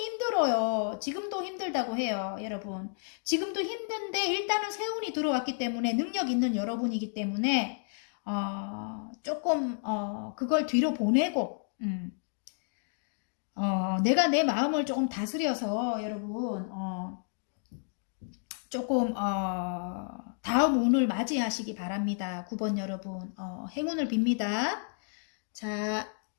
힘들어요. 지금도 힘들다고 해요, 여러분. 지금도 힘든데 일단은 세운이 들어왔기 때문에 능력 있는 여러분이기 때문에 조금 그걸 뒤로 보내고 내가 내 마음을 조금 다스려서 여러분 조금 다음 운을 맞이하시기 바랍니다. 9번 여러분 행운을 빕니다. 자,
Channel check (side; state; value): right; silent; 57 dB below the other